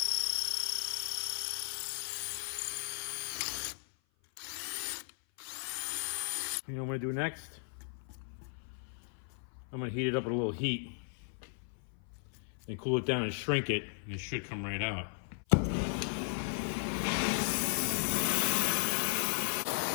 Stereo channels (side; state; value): right; silent; 54 dB below the other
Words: You know what I'm going to do next? I'm gonna heat it up with a little heat, then cool it down and shrink it, and it should come right out.